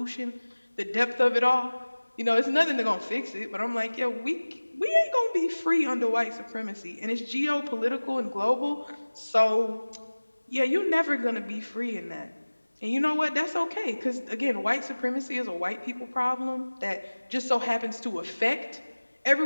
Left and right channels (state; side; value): inverted; both; correlation -1.00